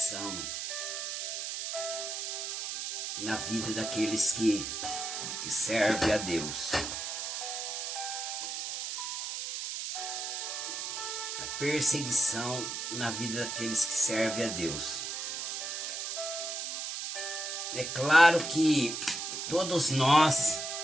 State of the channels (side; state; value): right; noise; hiss, 4 dB below the sound